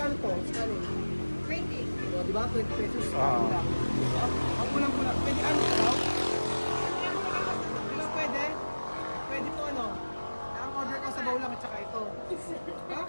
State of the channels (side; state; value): both; inverted; correlation -1.00